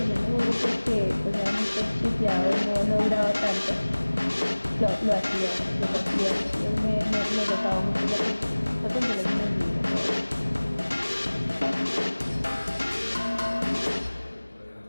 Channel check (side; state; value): both; inverted; correlation -1.00